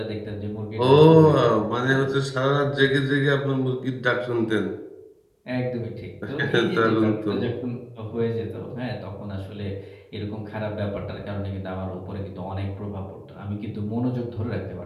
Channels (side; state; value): both; identical; correlation 1.00